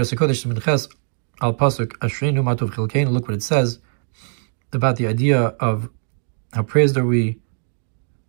what it says about the idea of how praised are we,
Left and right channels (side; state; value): left; silent; 65 dB below the other